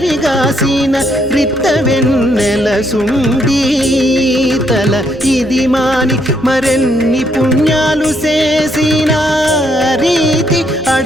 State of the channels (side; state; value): both; normal; correlation 0.73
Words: రిత్త వెన్నెల సుండి తల ఇది మాని మరెన్ని పుణ్యాలు చేసిన రీతి